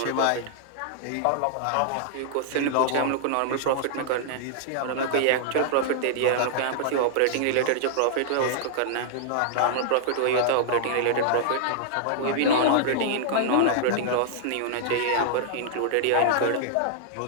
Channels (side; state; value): both; different; correlation -0.01